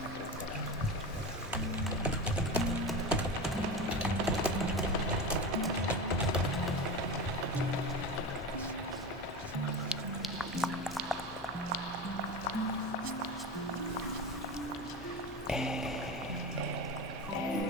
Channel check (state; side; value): noise; left; hum, 19 dB below the sound